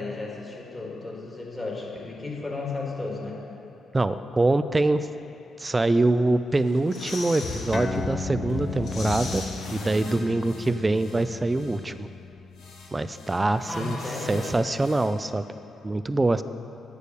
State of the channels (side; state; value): both; normal; correlation 0.94